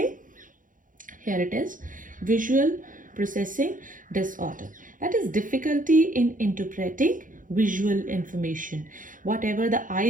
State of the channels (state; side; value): late; left; 0.39 ms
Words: Here it is, visual processing disorder. That is difficulty in interpreting visual information. Whatever the